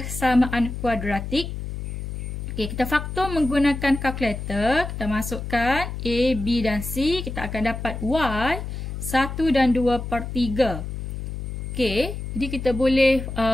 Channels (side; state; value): left; noise; hum, 6 dB below the sound